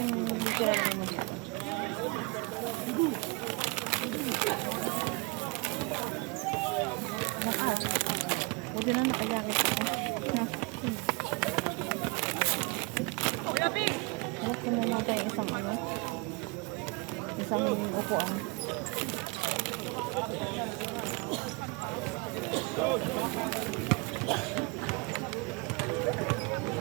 tira mo. Diyan na nakajakit ako. No. Harap ko muna tayo isang ano. Isang upuan.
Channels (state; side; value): quieter; left; 29.2 dB